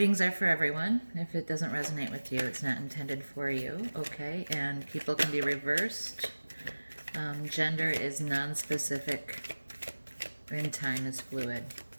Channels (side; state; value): both; inverted; correlation -1.00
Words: are for everyone. If it doesn't resonate with you, it's not intended for you. Okay? And people can be reversed. Gender is non-specific, and time is fluid.